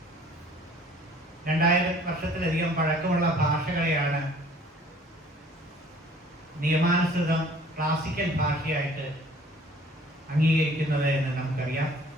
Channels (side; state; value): both; normal; correlation 0.53